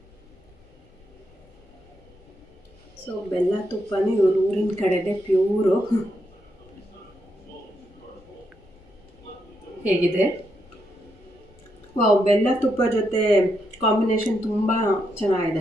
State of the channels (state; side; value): noise; left; rumble, 27 dB below the sound